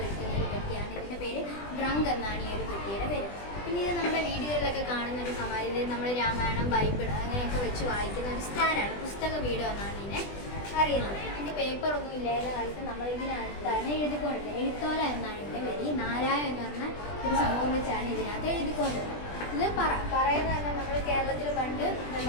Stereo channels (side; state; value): right; late; 20 ms